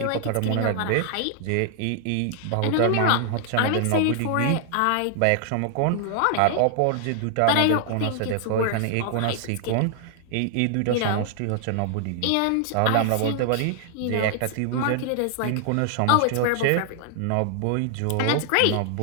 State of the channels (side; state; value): both; different; correlation 0.00